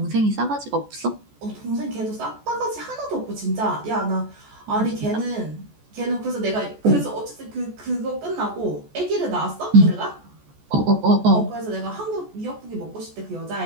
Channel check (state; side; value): late; left; 14 ms